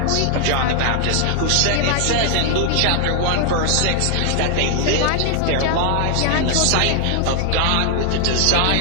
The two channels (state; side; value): different; both; correlation 0.00